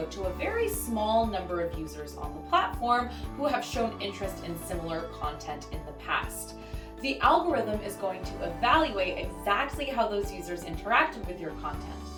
to a very small number of users on the platform who have shown interest in similar content in the past. The algorithm is going to evaluate exactly how those users interacted with your content.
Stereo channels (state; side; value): identical; both; correlation 1.00